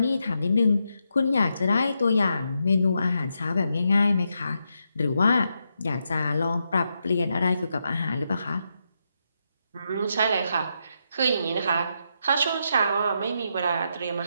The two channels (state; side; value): inverted; both; correlation -0.83